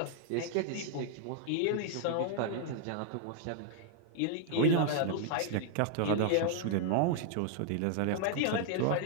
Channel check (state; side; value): different; both; correlation -0.01